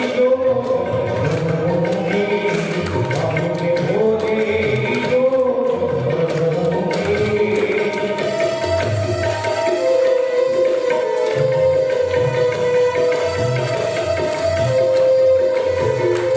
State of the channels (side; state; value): both; identical; correlation 1.00